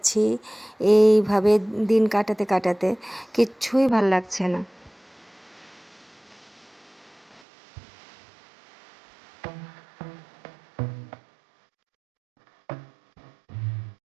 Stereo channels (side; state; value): left; drops out; at 7.4 s